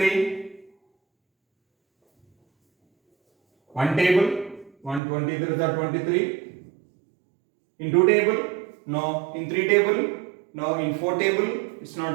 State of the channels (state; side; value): drops out; left; at 5.0 s